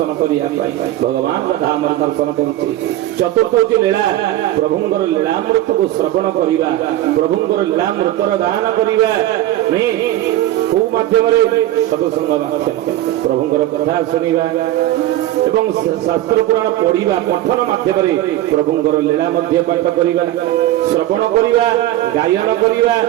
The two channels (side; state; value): left; quieter; 14.4 dB